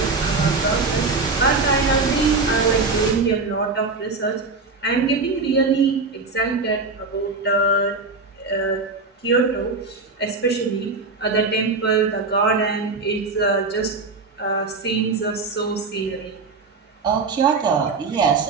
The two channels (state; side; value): quieter; left; 4.0 dB